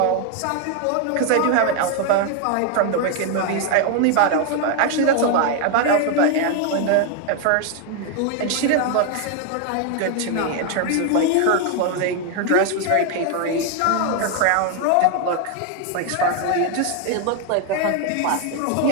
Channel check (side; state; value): both; different; correlation 0.01